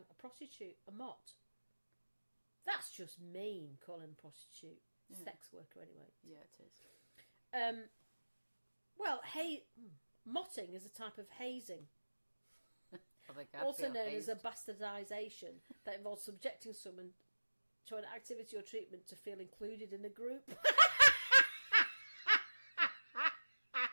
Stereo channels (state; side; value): inverted; both; correlation -1.00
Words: A prostitute. A mott. That's just mean, calling a prostitute. Yeah. Sex worker, anyway. Yeah, it is. Well, motting is a type of hazing. I Also feel known hazed. as a bastardisation that involves subjecting someone to an activity or treatment to feel included in a group.